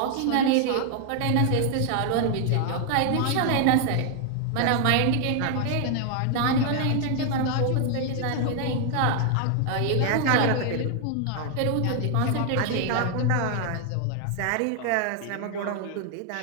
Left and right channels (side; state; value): both; different; correlation 0.00